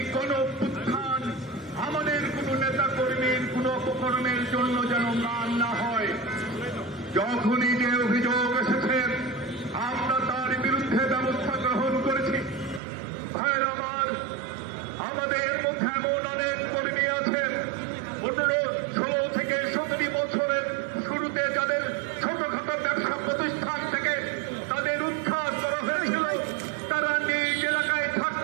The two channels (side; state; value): left; drops out; at 12.8 s